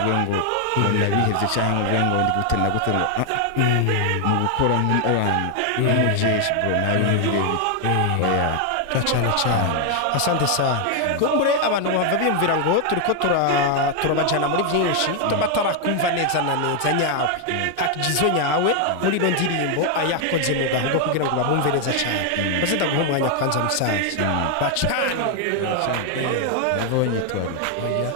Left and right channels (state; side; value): different; both; correlation 0.00